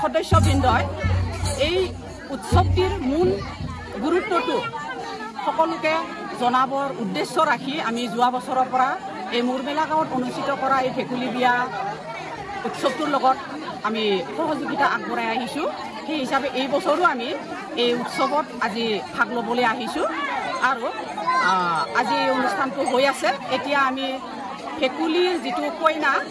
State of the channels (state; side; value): identical; both; correlation 1.00